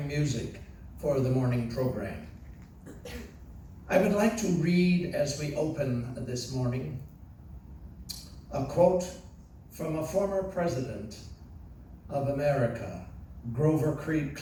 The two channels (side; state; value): both; identical; correlation 1.00